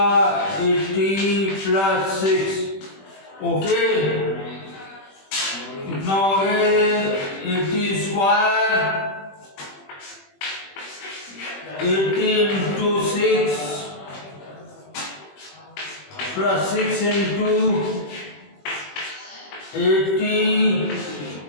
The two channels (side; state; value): right; late; 21 ms